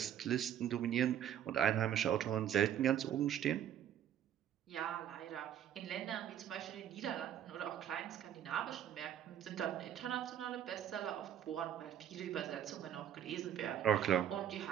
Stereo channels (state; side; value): quieter; left; 10.2 dB